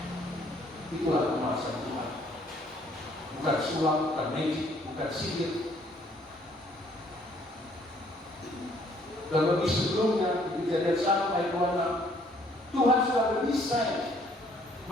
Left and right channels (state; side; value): normal; both; correlation 0.63